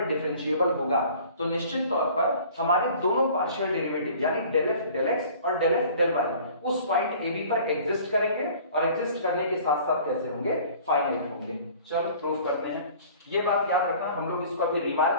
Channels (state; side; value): inverted; both; correlation -0.48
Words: डिफरेंशिएबल होगा तो निश्चित तौर पर हमारे दोनों पार्शियल डेरिवेटिव यानी डेल एफ डेल एक्स और डेल एफ डेल वाई उस पॉइंट ए बी पर एग्जिस्ट करेंगे और एग्जिस्ट करने के साथ साथ कैसे होंगे, फाइनाइट होंगे। चलो प्रूफ करते हैं। ये बात याद रखना, हम लोग इसको अभी